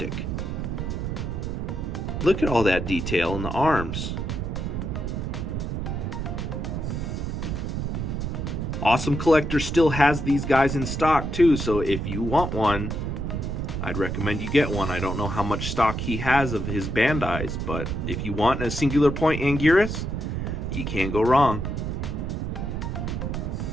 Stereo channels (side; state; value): right; noise; rumble, 3 dB below the sound